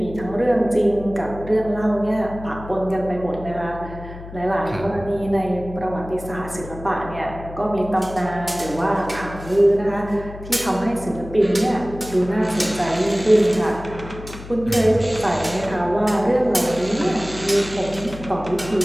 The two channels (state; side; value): noise; left; hum, 13 dB below the sound